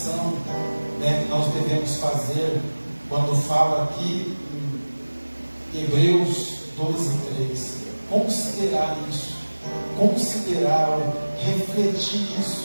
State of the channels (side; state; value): both; inverted; correlation -1.00